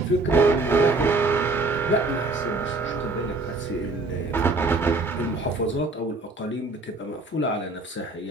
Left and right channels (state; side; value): quieter; left; 3.2 dB